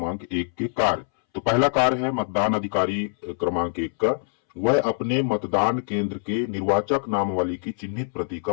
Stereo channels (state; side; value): silent; right; 62 dB below the other